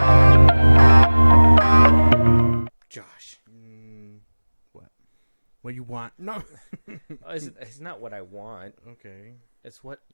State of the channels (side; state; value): both; inverted; correlation -1.00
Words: Josh. What you want? No. It's not what I want. Okay. It's what